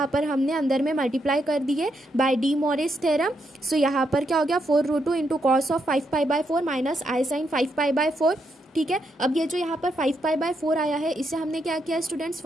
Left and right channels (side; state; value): both; normal; correlation 0.79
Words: पर हमने अंदर में मल्टीप्लाई कर दिए by D Morris theorem. So यहाँ पर क्या हो गया, 4 √2 into cos of 5π/4 minus i sine 5π/4। ठीक है, अब ये जो यहाँ पर 5π/4 आया है, इसे हमने क्या किया स्टूडेंट्स,